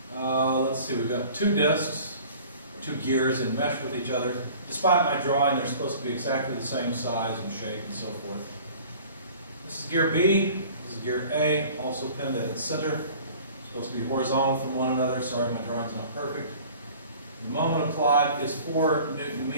Let's see, we've got two disks, two gears and mesh with each other. Despite my drawing, they're supposed to be exactly the same size and shape and so forth. This is gear B, this is gear A, also pinned at its center. Supposed to be horizontal from one another. Sorry, my drawing's not perfect. The moment applied is 4 Newton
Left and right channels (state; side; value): inverted; both; correlation -0.47